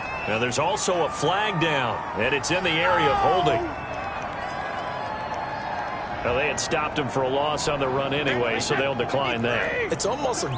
Now there's also a flag down, and it's in the area of holding. Now they had stopped him for a loss on the run anyway, so they'll decline that. It's almost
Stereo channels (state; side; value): identical; both; correlation 1.00